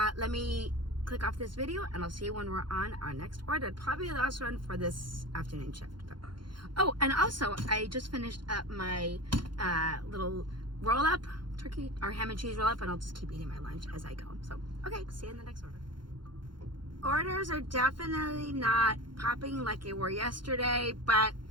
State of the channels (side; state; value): left; late; 0.72 ms